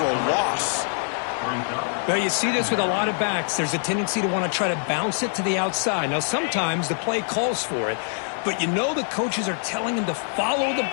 a loss. Well, you see this with a lot of backs. There's a tendency to want to try to bounce it to the outside. Now, sometimes the play calls for it, but you know the coaches are telling him to follow the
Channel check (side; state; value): right; silent; 56 dB below the other